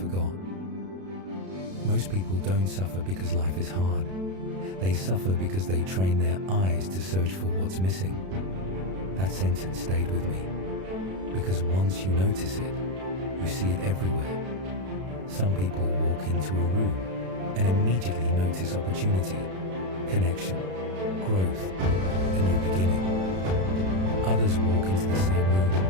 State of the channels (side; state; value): left; late; 32 ms